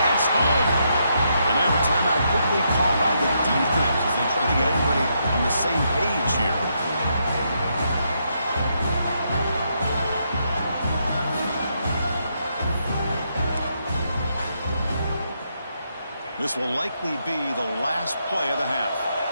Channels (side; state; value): both; inverted; correlation -0.79